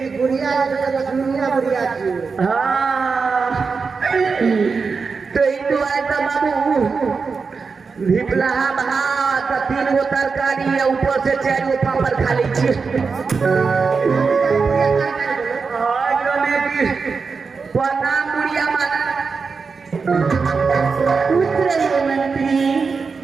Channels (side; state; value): left; quieter; 5.0 dB